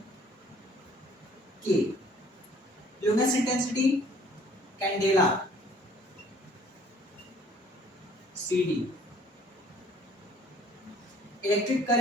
K. Luminous intensity, candela, CD. Electric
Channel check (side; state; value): both; normal; correlation 0.56